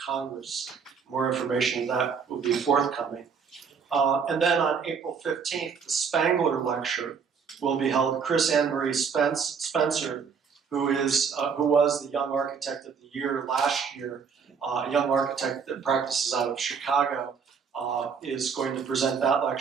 More information on that will be forthcoming. And then on April 15th, the Spangler Lecture will be held. Chris Ann Marie Spencer, who was the Young Architect of the Year last year, a young architect that practices out of Chicago, is going to present that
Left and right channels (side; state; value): left; quieter; 6.2 dB